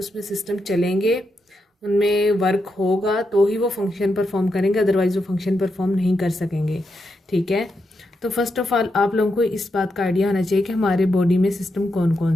सिस्टम चलेंगे, उनमें वर्क होगा तो ही वो फंक्शन परफॉर्म करेंगे, अदरवाइज वो फंक्शन परफॉर्म नहीं कर सकेंगे. ठीक है, तो फर्स्ट ऑफ ऑल आप लोगों को इस बात का आइडिया होना चाहिए कि हमारे बॉडी में सिस्टम कौन कौन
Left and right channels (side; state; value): both; normal; correlation 0.84